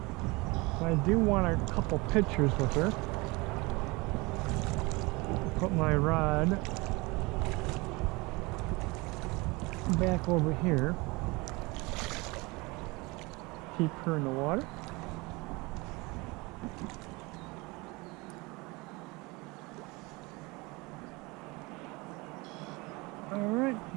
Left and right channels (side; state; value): left; quieter; 24.8 dB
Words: I do want a couple pictures with her. Put my rod back over here. Keep her in the water. Alright,